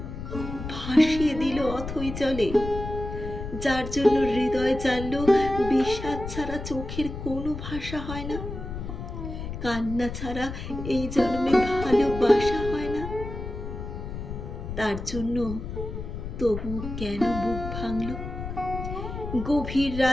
ভাসিয়ে দিল অথই জলে, যার জন্য হৃদয় জানল বিষাদ ছাড়া চোখের কোনো ভাষা হয় না, কান্না ছাড়া এই জন্মে ভালোবাসা হয় না। তার জন্য তবু কেন বুক ভাঙল, গভীর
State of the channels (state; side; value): noise; left; rumble, 7 dB below the sound